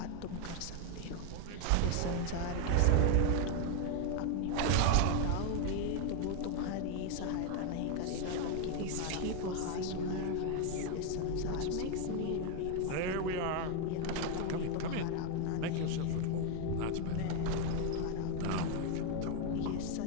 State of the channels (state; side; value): different; both; correlation 0.01